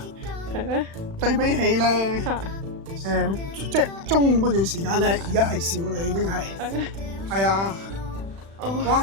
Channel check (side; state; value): left; late; 36 ms